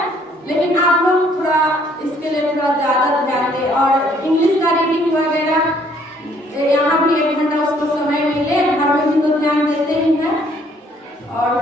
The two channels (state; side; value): normal; both; correlation 0.63